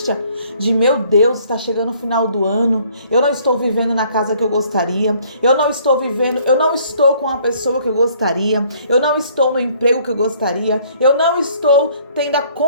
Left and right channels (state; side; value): inverted; both; correlation -0.60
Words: de, meu Deus, está chegando o final do ano, eu não estou vivendo na casa que eu gostaria, eu não estou com a pessoa que eu gostaria, eu não estou no emprego que eu gostaria, eu não estou tendo a